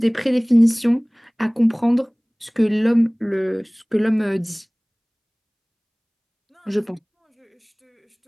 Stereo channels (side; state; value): both; identical; correlation 1.00